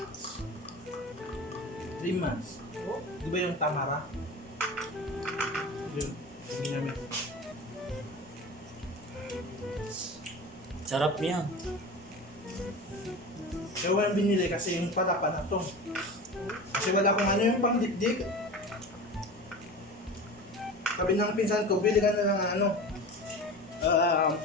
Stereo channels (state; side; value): normal; both; correlation 0.32